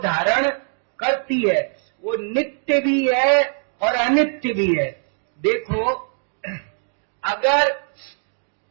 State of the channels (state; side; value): silent; left; digital silence